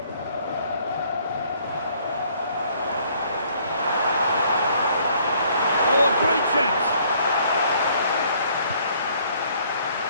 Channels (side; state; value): both; inverted; correlation -0.62